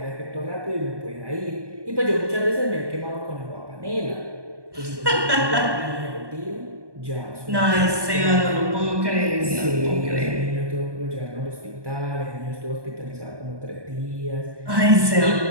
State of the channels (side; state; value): left; late; 1.2 ms